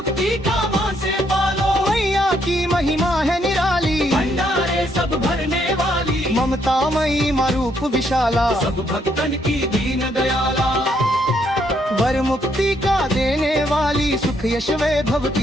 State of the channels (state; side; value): normal; both; correlation 0.73